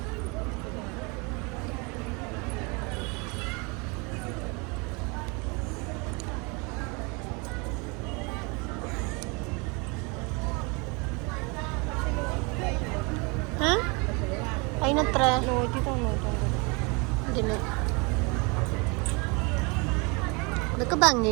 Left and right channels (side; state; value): left; quieter; 29.8 dB